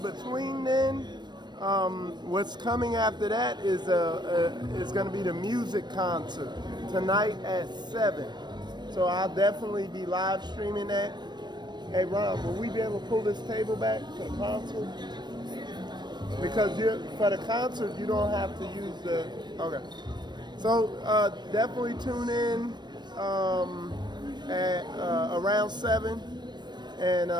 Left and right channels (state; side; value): late; left; 0.21 ms